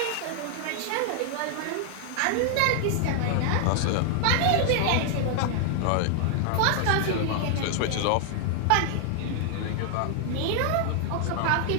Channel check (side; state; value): both; different; correlation 0.00